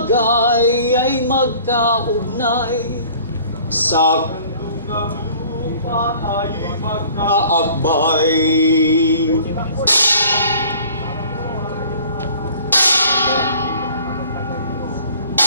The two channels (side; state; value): both; inverted; correlation -0.51